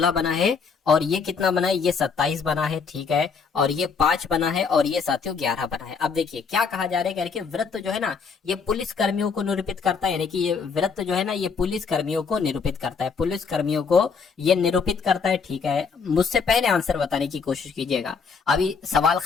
बना है, और ये कितना बना है, ये 27 बना है, ठीक है, और ये 5 बना है, और ये साथियों 11 बना है। अब देखिए क्या कहा जा रहा है कि वृत्त जो है ना ये पुलिस कर्मियों को निरूपित करता है, यानी कि ये वृत्त जो है ना ये पुलिस कर्मियों को निरूपित करता है, पुलिस कर्मियों को ये निरूपित करता है, ठीक है। मुझसे पहले आंसर बताने की कोशिश कीजिएगा, अभी सवाल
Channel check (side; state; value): right; quieter; 5.5 dB